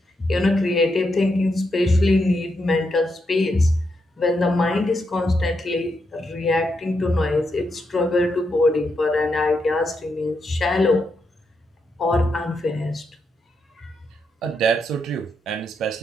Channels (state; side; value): normal; both; correlation 0.82